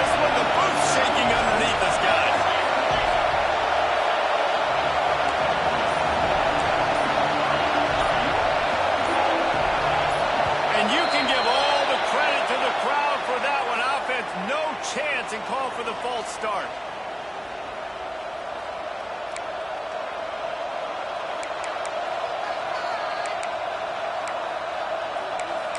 And call for the false start.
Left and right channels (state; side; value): identical; both; correlation 1.00